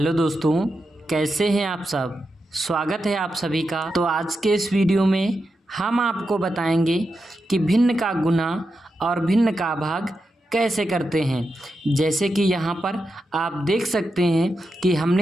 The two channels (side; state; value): both; normal; correlation 0.88